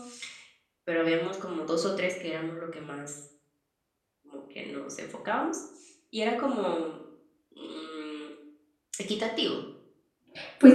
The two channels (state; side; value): identical; both; correlation 1.00